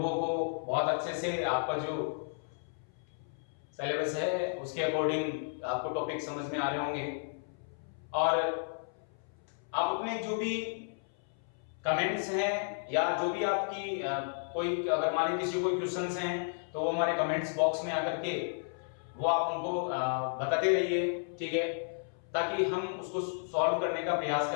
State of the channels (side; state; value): right; silent; 56 dB below the other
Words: को बहुत अच्छे से आपका जो सिलेबस है उसके अकॉर्डिंग आपको टॉपिक समझ में आ रहे होंगे और आप अपने जो भी कमेंट्स हैं या जो भी आपकी कोई अगर मान लीजिए किसी कोई क्वेश्चंस हैं तो वो हमारे कमेंट्स बॉक्स में आकर के वो आप उनको बताते रहिए, ठीक है, ताकि हम उसको सॉल्व करने का प्रयास